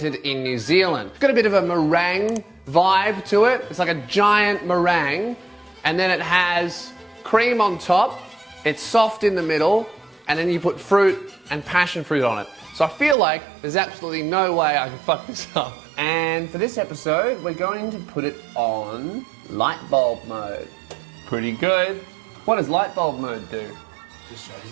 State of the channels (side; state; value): left; drops out; at 13.2 s